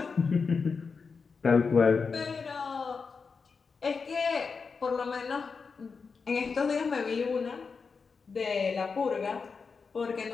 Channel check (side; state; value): right; quieter; 5.1 dB